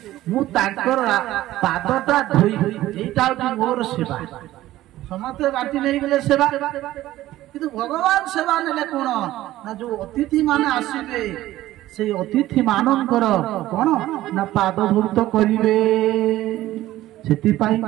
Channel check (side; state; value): left; quieter; 15.2 dB